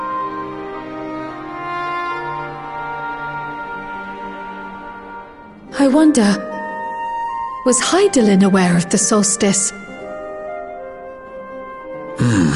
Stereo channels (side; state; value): both; identical; correlation 1.00